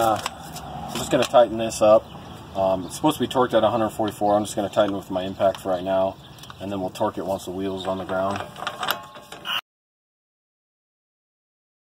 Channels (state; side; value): identical; both; correlation 1.00